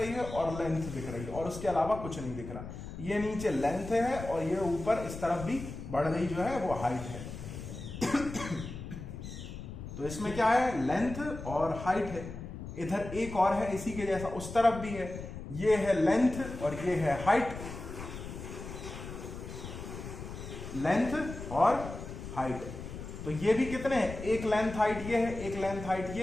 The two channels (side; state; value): left; noise; rumble, 10 dB below the sound